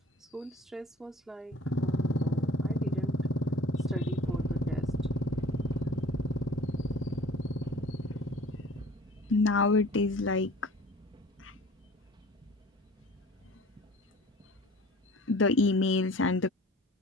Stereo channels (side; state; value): both; normal; correlation 0.46